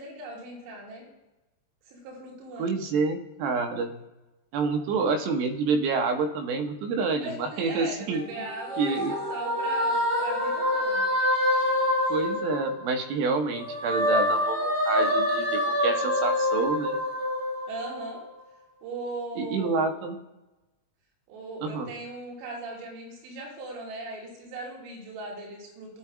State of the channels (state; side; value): late; left; 20 ms